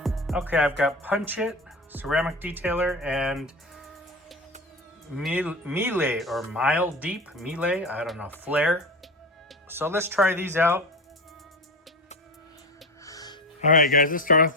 Okay, I've got Punch It, Ceramic Detailer, and Melee or Mile Deep, Melee, I don't know, Flare. So let's try these out. All right, guys, let's start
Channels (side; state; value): both; normal; correlation 0.25